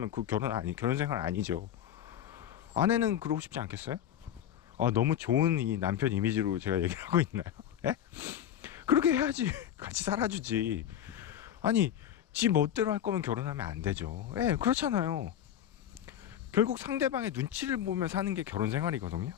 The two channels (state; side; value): quieter; right; 10.3 dB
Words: 그 결혼 생활 아니죠. 아내는 그러고 싶지 않겠어요? 아, 너무 좋은 이 남편 이미지로 제가 얘기를 하고 있나요? 예? 그렇게 해야지. 같이 살아주지. 아니 지 멋대로 할 거면 결혼하면 안 되죠. 예, 그렇잖아요. 결국 상대방의 눈치를 보며 사는 게 결혼 생활이거든요.